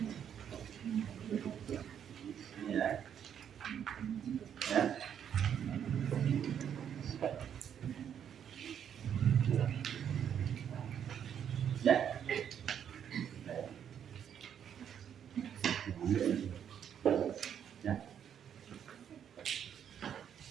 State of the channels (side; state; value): left; quieter; 8.8 dB